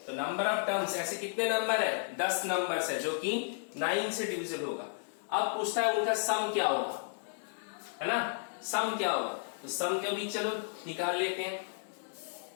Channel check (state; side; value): silent; right; digital silence